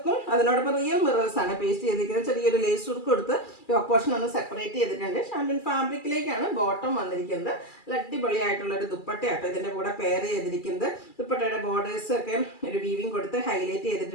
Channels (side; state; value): right; late; 2.4 ms